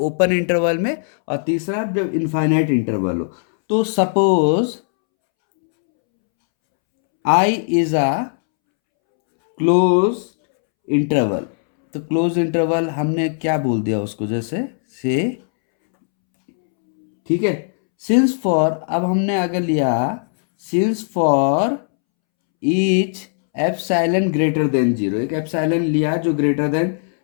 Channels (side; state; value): right; silent; 67 dB below the other